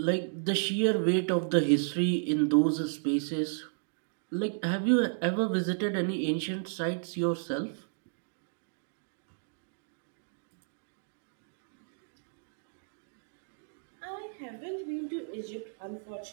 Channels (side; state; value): left; silent; digital silence